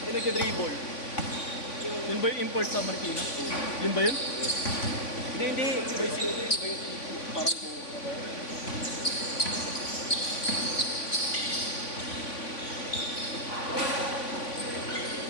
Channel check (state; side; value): late; right; 3.5 ms